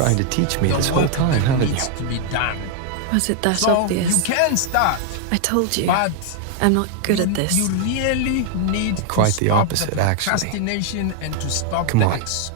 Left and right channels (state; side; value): different; both; correlation 0.00